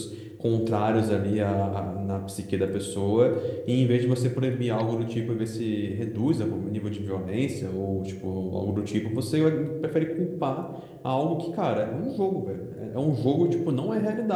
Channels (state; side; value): identical; both; correlation 1.00